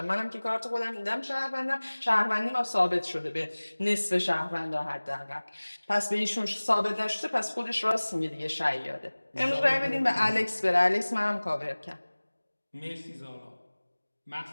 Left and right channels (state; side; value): inverted; both; correlation -1.00